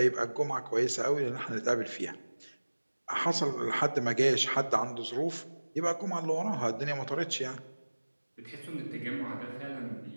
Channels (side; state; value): both; inverted; correlation -1.00